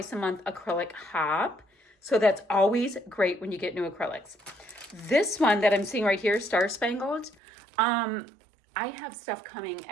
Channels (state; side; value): drops out; left; at 7.4 s